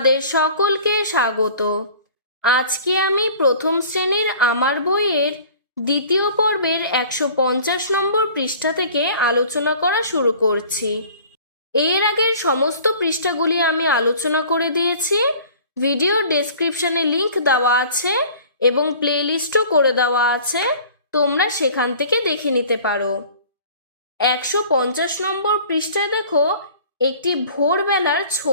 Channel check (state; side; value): inverted; both; correlation -0.47